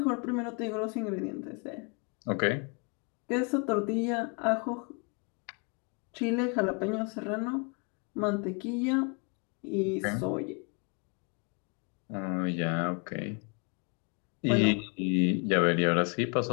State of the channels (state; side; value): quieter; right; 34.5 dB